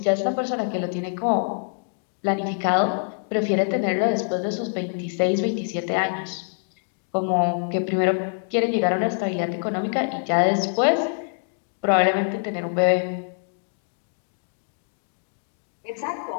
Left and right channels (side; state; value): right; silent; digital silence